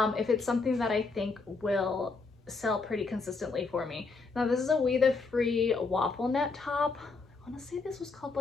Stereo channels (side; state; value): right; quieter; 4.1 dB